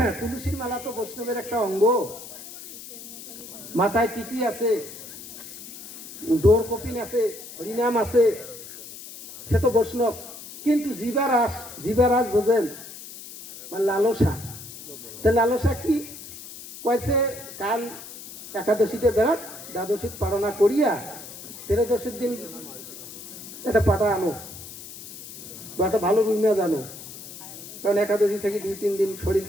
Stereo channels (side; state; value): left; noise; hiss, 14 dB below the sound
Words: তুলসীর মালা তো বৈষ্ণবের একটা অঙ্গ। মাথায় টিকি আছে, ডোর কপিন আছে, হরিনাম আছে, সে তো বৈষ্ণব। কিন্তু জীবারাস বোঝেন মানে লালসা। তা লালসা কি কয়েছে? কাল একাদশীতে বেড়াক, দ্বাদশী পালনা করিয়া 13দশীর দিন একটা পাটা আনো বা একটা ভালো রুমিয়া জানো, কারণ একাদশী থেকে 2-3 দিন